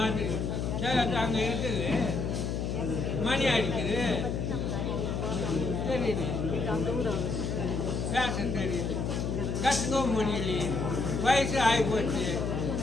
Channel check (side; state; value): left; noise; hum, 1 dB below the sound